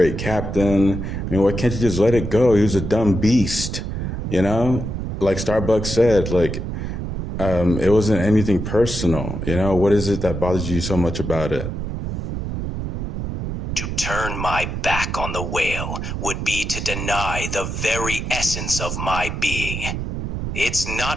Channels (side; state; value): right; noise; rumble, 4 dB below the sound